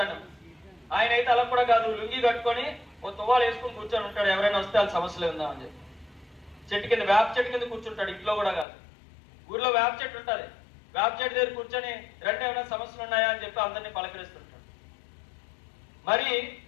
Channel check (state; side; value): drops out; right; at 8.7 s